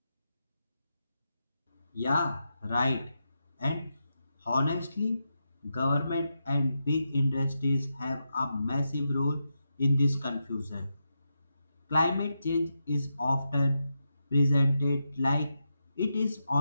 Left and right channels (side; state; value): both; inverted; correlation -0.87